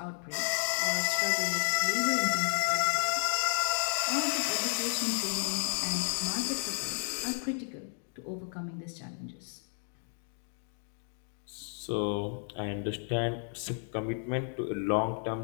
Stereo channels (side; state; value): right; silent; 56 dB below the other